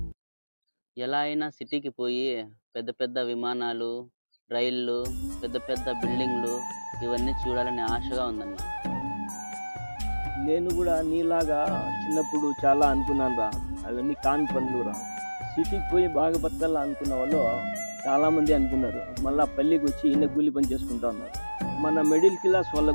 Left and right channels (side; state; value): both; inverted; correlation -1.00